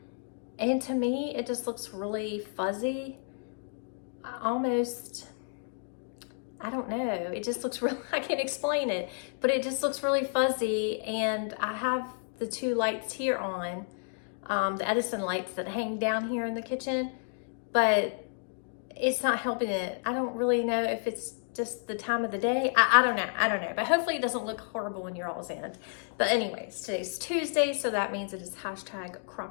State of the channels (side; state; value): right; silent; 57 dB below the other